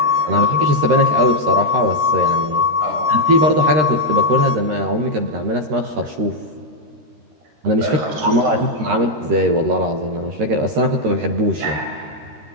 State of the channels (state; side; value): late; left; 13 ms